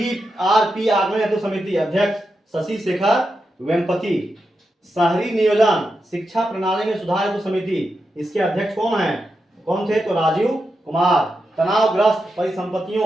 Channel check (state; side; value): normal; both; correlation 0.87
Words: आगमन हेतु समिति, अध्यक्ष शशि शेखर वेम्पति। शहरी नियोजन शिक्षा प्रणाली में सुधार हेतु समिति, इसके अध्यक्ष कौन थे? तो राजीव कुमार। तनावग्रस्त